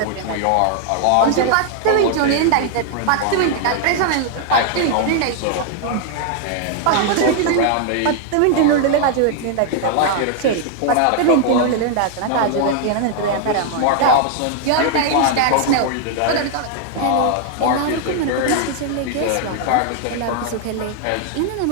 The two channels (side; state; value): both; different; correlation 0.00